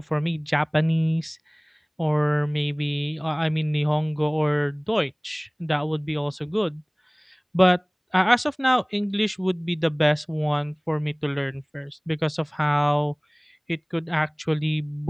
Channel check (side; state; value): both; identical; correlation 1.00